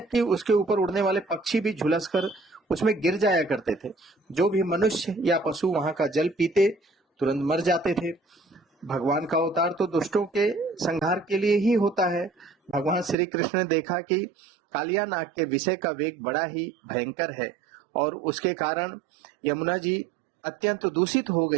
कि उसके ऊपर उड़ने वाले पक्षी भी झुलसकर उसमें गिर जाया करते थे। जो भी मनुष्य या पशु वहां का जल पीते तुरंत मर जाते थे। भगवान का अवतार तो दुष्टों के संहार के लिए ही होता है। भगवान श्री कृष्ण ने देखा कि कालिया नाग के विषय का वेग बड़ा ही भयंकर है और उसके कारण यमुना जी अत्यंत दूषित हो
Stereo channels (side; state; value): left; drops out; at 13.2 s